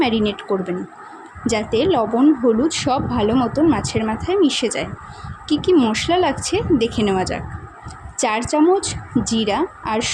ম্যারিনেট করবেন, যাতে লবণ হলুদ সব ভালো মতন মাছের মাথায় মিশে যায়। কী কী মশলা লাগছে দেখে নেওয়া যাক। 4 চামচ জিরা আর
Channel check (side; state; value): both; identical; correlation 1.00